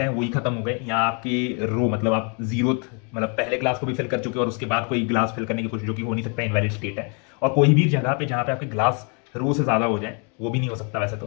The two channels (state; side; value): quieter; right; 36.9 dB